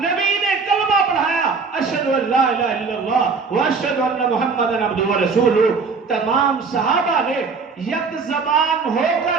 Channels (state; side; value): quieter; left; 4.8 dB